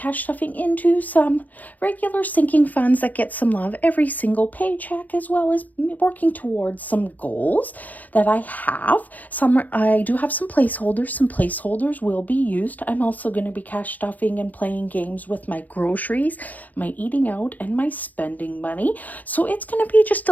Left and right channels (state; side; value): late; right; 0.081 ms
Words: stuffing into some regular sinking funds that get some love every single paycheck, as well as working towards some goals that I have. I do have some placeholders. Some placeholders will be used. I'm also going to be cash stuffing and playing games with my groceries, my eating out, and my spending money. So it's going to be just